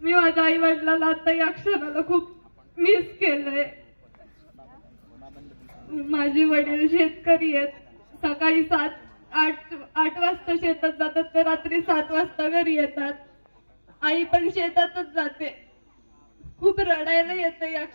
मी माझ्या आई वडिलांना आता या क्षणाला खूप मिस केलंय. माझे वडील शेतकरी आहेत. सकाळी 7-8 वाजता शेतात जातात ते रात्री 7 वाजता घरी येतात. आई पण शेतातच जाते. खूप रडायला येतं या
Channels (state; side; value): inverted; both; correlation -1.00